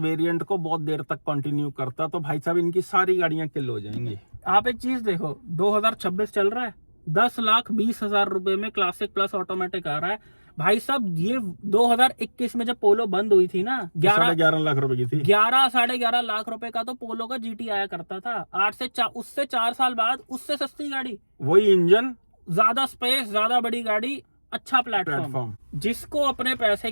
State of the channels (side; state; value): both; inverted; correlation -1.00